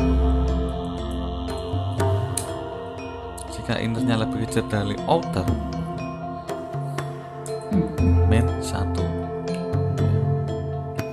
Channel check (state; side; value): identical; both; correlation 1.00